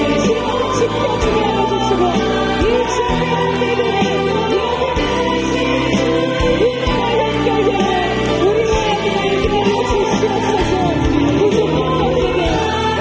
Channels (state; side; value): identical; both; correlation 1.00